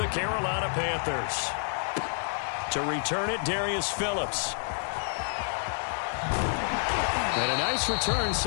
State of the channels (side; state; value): right; silent; 59 dB below the other